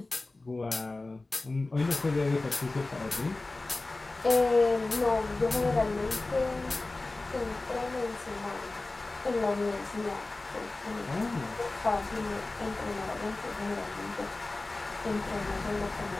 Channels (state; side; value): quieter; right; 3.1 dB